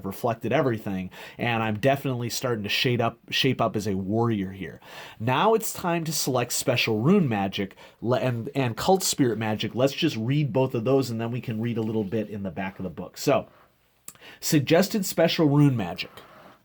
reflected everything, and I'm definitely starting to shape up as a warrior here. Now it's time to select special rune magic and cult spirit magic. Let's just read both of those, and then we can read a little bit in the back of the book. So, suggested special rune magic.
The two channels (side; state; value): both; identical; correlation 1.00